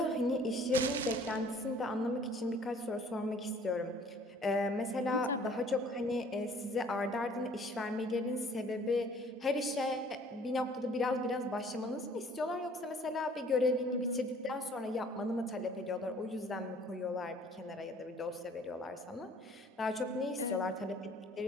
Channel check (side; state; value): both; normal; correlation 0.54